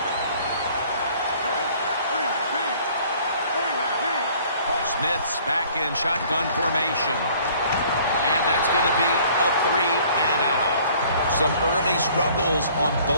Smith's back in shotgun formation. And that's going to be a 3-and-out. Some early struggles on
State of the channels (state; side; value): inverted; both; correlation -0.55